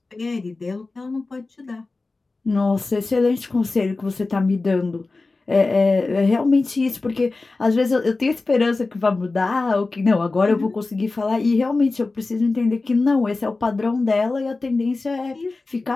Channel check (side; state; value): right; quieter; 3.5 dB